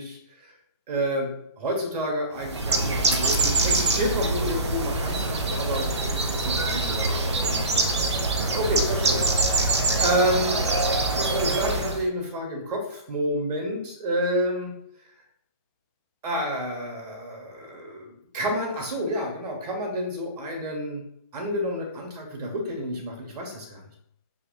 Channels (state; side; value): inverted; both; correlation -0.32